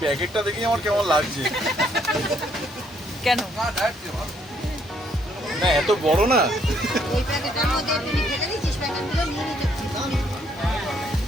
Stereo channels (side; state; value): both; normal; correlation 0.69